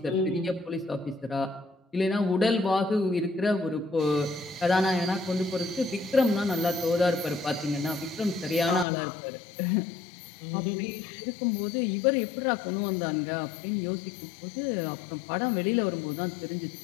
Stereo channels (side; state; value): right; drops out; at 8.8 s